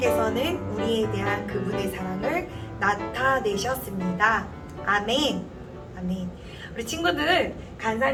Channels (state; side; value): identical; both; correlation 1.00